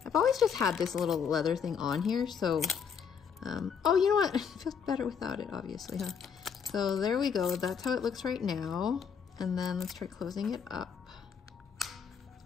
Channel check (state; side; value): quieter; right; 6.9 dB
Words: I've always just had this little leather thing on here, so, oh, you know what? It feels better without it, obviously, huh? So there we go. That's how it looks right now. And then let's try closing it up.